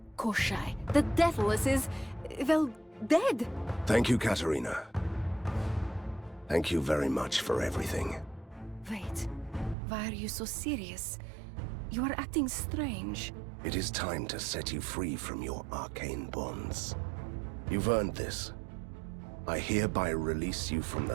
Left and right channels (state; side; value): drops out; left; at 9.8 s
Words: Koshai, the Deathless is, well, dead. Thank you, Katarina. Thank you very much for everything. Wait, why are you so serious? You are acting strange. It is time to set you free from your arcane bonds. You've earned this. I hereby release you from